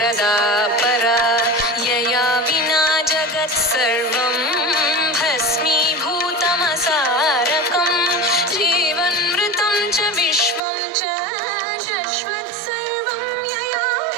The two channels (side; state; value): left; drops out; at 10.6 s